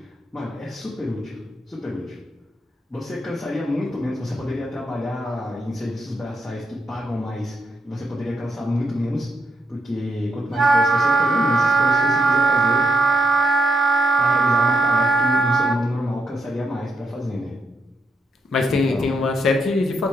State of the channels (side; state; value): both; normal; correlation 0.79